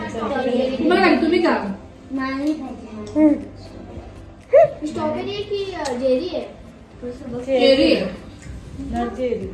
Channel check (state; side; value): identical; both; correlation 1.00